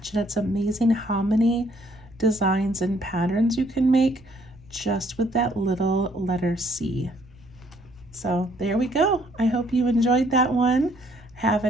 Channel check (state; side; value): noise; right; rumble, 28 dB below the sound